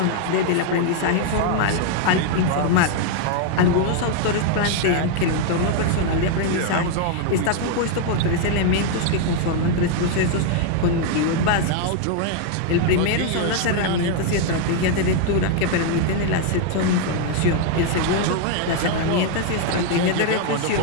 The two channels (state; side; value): different; both; correlation 0.00